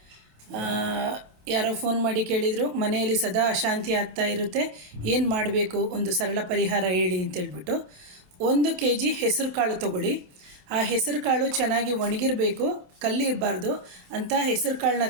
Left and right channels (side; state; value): left; late; 28 ms